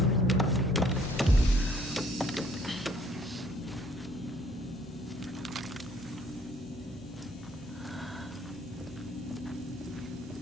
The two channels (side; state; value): both; normal; correlation 0.61